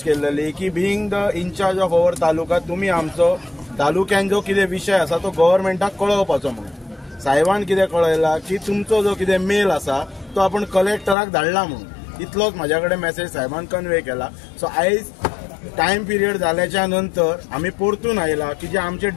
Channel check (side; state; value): right; drops out; at 11.2 s